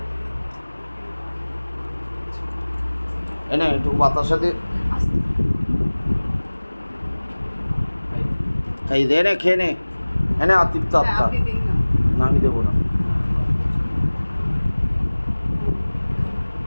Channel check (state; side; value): inverted; both; correlation -1.00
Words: এনে একটু বাতার সাথে এই দে, নে খেয়ে নে। এনে আতিপ্ত আত্মা না, আমি দেবো না।